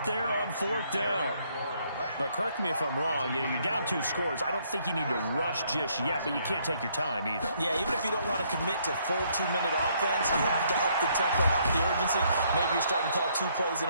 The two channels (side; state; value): both; inverted; correlation -0.69